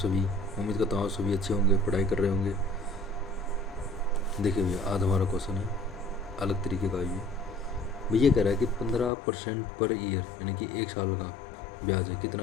उम्मीद करता हूँ आप सभी अच्छे होंगे, पढ़ाई कर रहे होंगे। देखिए भैया, आज हमारा क्वेश्चन है अलग तरीके का। ये भैया कह रहा है कि 15% पर ईयर, यानी कि एक साल का ब्याज है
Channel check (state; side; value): drops out; right; at 9.1 s